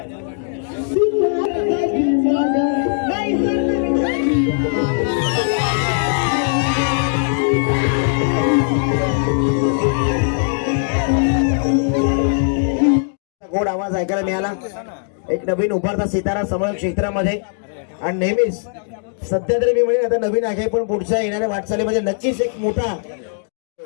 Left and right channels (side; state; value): right; silent; digital silence